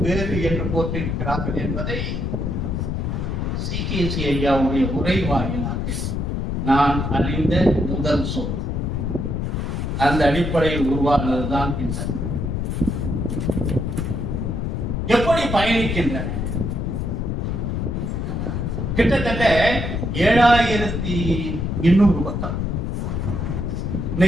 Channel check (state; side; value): noise; left; rumble, 1 dB below the sound